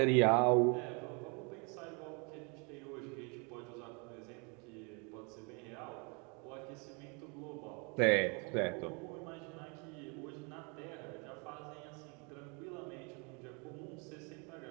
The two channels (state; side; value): quieter; left; 32.9 dB